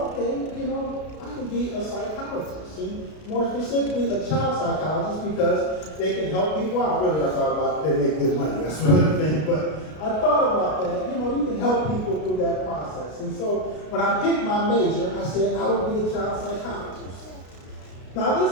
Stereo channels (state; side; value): late; right; 33 ms